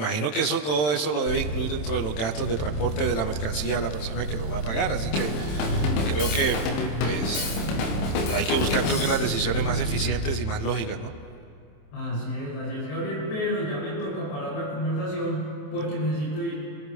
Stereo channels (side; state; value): right; late; 27 ms